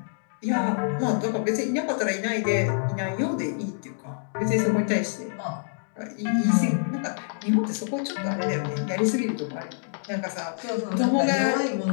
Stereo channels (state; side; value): silent; right; digital silence